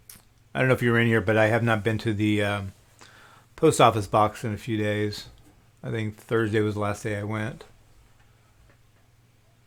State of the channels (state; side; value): identical; both; correlation 1.00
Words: I don't know if you were in here, but I have not been to the post office box in a few days. I think Thursday was the last day I went.